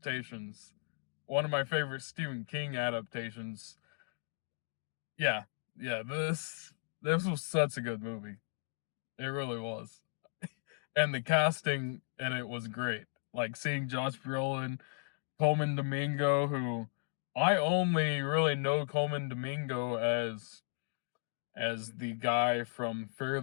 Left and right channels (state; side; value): silent; right; digital silence